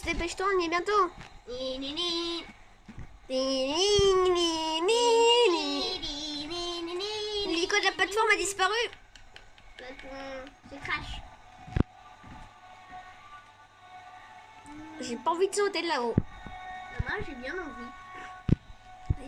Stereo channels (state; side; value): identical; both; correlation 1.00